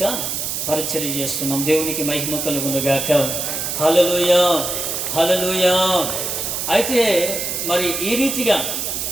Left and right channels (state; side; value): noise; right; hiss, 3 dB below the sound